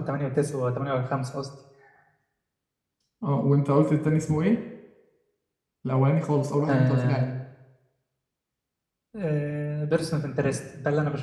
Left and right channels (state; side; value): identical; both; correlation 1.00